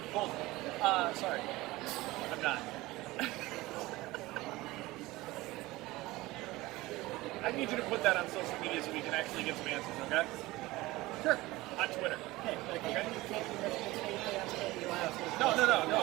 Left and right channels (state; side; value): quieter; left; 19.4 dB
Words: Sorry, I'm not. I need you to put that on social media so we can actually get some answers. Okay? Sure. On Twitter. Hey, but you can't be Michigan State fans, can't be Ohio State No.